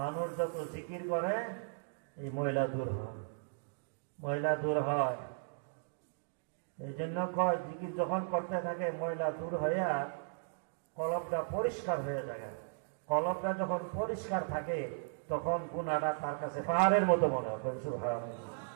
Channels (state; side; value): silent; left; digital silence